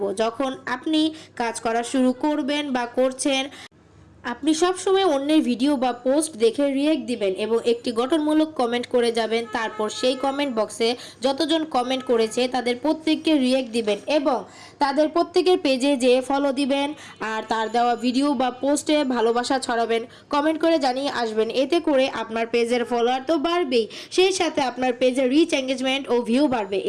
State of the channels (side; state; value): both; identical; correlation 1.00